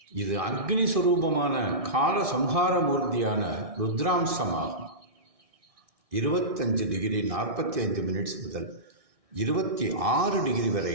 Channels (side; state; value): left; late; 1.6 ms